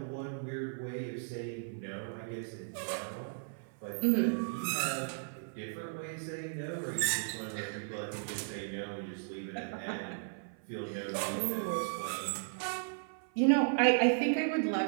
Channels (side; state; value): left; silent; 54 dB below the other